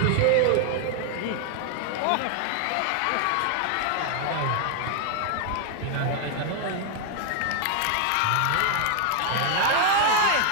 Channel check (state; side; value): different; both; correlation 0.00